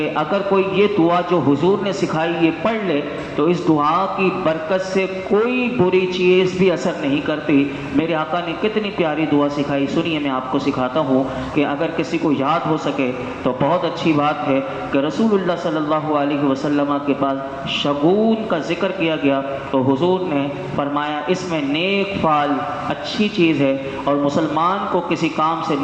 اگر کوئی یہ دعا جو حضور نے سکھائی یہ پڑھ لے تو اس دعا کی برکت سے کوئی بری چیز بھی اثر نہیں کرتی۔ میرے آقا نے کتنی پیاری دعا سکھائی، سنیے میں آپ کو سکھاتا ہوں کہ اگر کسی کو یاد ہو سکے تو بہت اچھی بات ہے کہ رسول اللہ صلی اللہ علیہ وسلم کے پاس شگون کا ذکر کیا گیا تو حضور نے فرمایا اس میں نیک فعل اچھی چیز ہے اور مسلمان کو کسی کام سے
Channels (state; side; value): identical; both; correlation 1.00